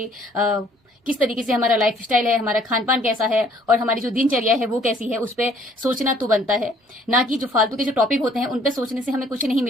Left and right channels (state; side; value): normal; both; correlation 0.60